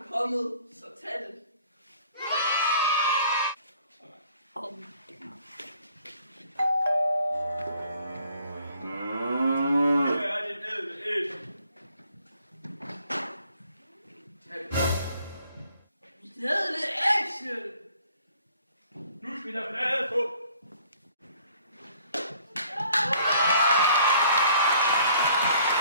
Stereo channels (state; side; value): inverted; both; correlation -0.58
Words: kommet, så tag det.